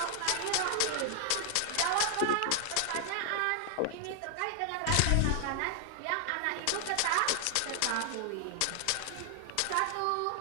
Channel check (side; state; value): both; different; correlation 0.00